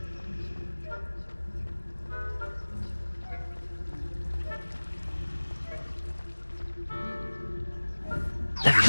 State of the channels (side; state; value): both; inverted; correlation -1.00